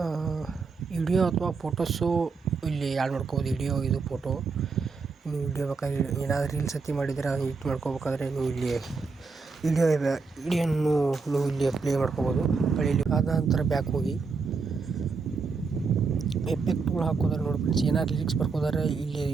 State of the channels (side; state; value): left; quieter; 4.7 dB